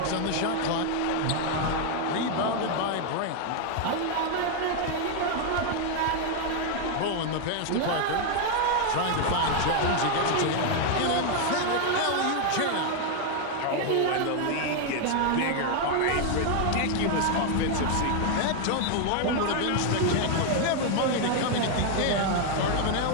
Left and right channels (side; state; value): both; different; correlation 0.00